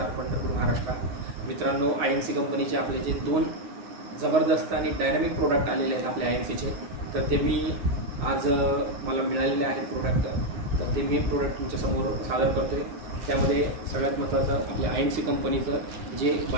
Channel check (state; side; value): late; left; 9.5 ms